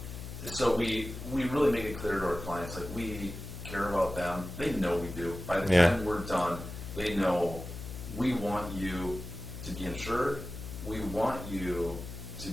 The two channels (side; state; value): left; noise; hum, 10 dB below the sound